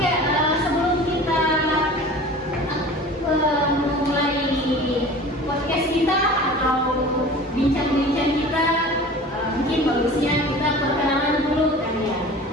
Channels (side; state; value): both; normal; correlation 0.40